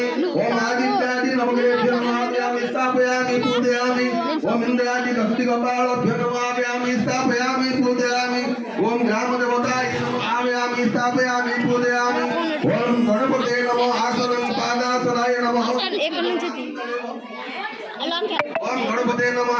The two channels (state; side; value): identical; both; correlation 1.00